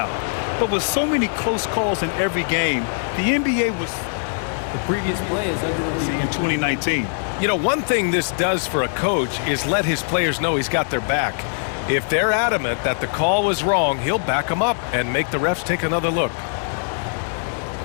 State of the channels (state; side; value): silent; right; digital silence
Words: But with so many close calls in every game, the NBA was... The previous play is under review in 2019. You know, one thing this does for a coach is let his players know he's got their back. If they're adamant that the call was wrong, he'll back them up and make the refs take another look.